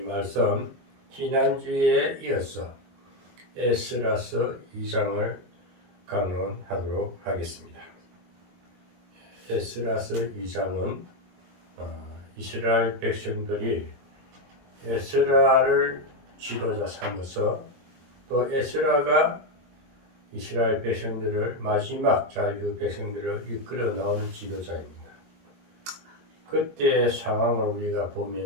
말씀 지난주에 이어서 에스라서 2장을 강론하도록 하겠습니다. 에스라서 2장은 이스라엘 백성들이 에스라를 지도자 삼아서 또 에스라가 이스라엘 백성들을 마지막 자유 백성들을 이끌어 나오는 지도자입니다. 그때의 상황을 우리가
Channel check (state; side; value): late; left; 22 ms